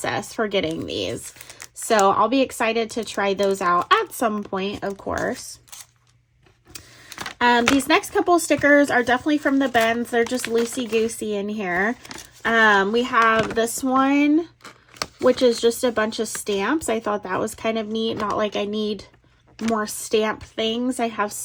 for getting these. So I'll be excited to try those out at some point, of course. These next couple stickers are definitely from the bins. They're just loosey-goosey in here. We have this one, which is just a bunch of stamps. I thought that was kind of neat. Not like I need more stamp things. I have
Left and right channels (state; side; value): identical; both; correlation 1.00